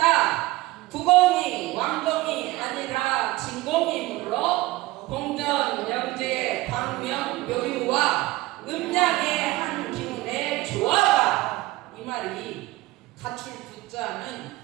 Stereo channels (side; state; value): left; quieter; 19.2 dB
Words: 구공이 왕공이 아니라 진공이므로 공전 영재의 광명 묘유와 음양의 한 기운의 조화가. 이 말이 갖출 구자는